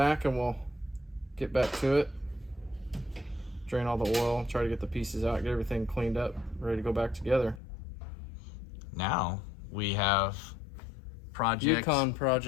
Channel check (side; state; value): right; drops out; at 7.6 s